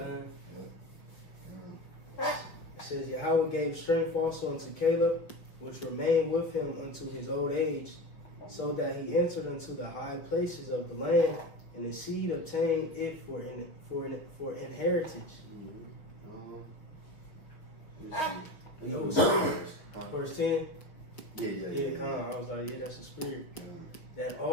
It says, Yahweh gave strength also unto Caleb, which remained with him unto his old age, so that he entered into the high places of the land, and his seed obtained it for inheritance. Verse 10. Yeah. I was like, yeah, that's the spirit. That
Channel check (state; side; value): late; right; 5.8 ms